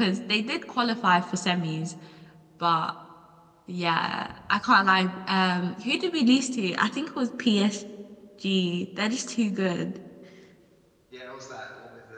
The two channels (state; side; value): identical; both; correlation 1.00